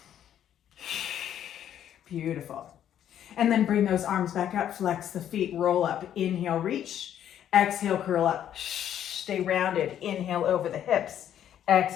Beautiful. And then bring those arms back up, flex the feet, roll up. Inhale, reach. Exhale, curl up. Stay rounded. Inhale over the hips.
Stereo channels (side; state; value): right; quieter; 10.4 dB